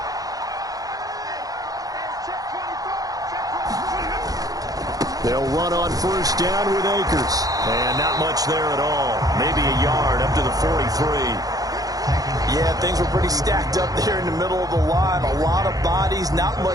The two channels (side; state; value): left; late; 0.18 ms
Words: They'll run on first down with Akers. And not much there at all. Maybe a yard up to the 43. Yeah, things were pretty stacked up there in the middle of the line. A lot of bodies, not